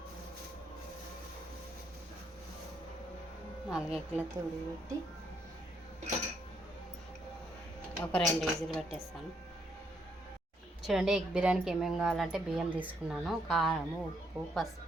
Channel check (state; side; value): normal; both; correlation 0.73